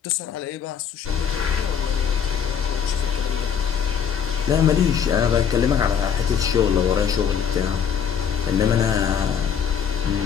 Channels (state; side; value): quieter; right; 7.6 dB